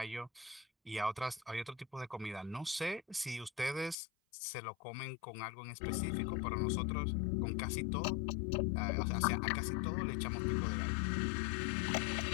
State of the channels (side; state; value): right; drops out; at 4.0 s